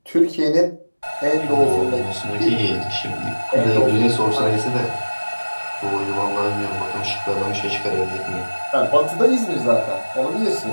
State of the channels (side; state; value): both; inverted; correlation -1.00